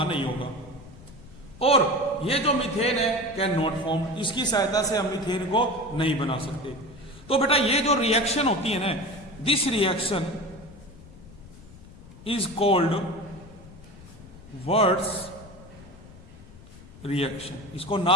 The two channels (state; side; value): noise; left; rumble, 19 dB below the sound